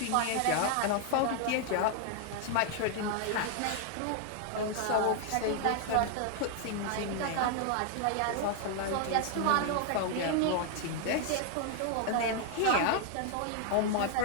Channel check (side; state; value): both; different; correlation 0.00